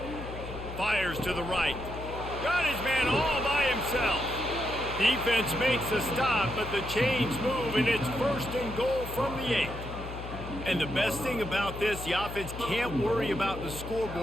Fires to the right. Got his man all by himself. Defense makes a stop, but the chains move, and it's first and goal from the 8. And the best thing about this, the offense can't worry about the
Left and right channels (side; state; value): left; noise; hum, 10 dB below the sound